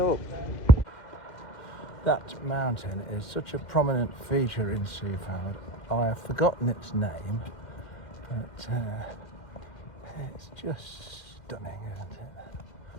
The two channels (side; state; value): right; late; 2.0 ms